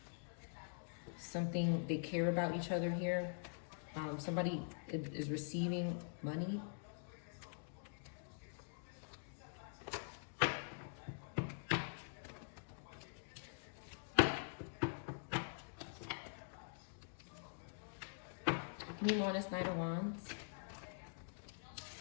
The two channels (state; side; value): silent; right; digital silence